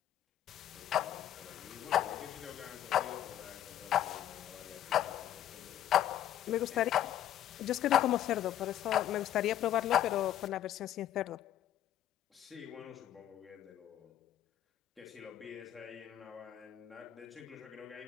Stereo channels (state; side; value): quieter; right; 11.5 dB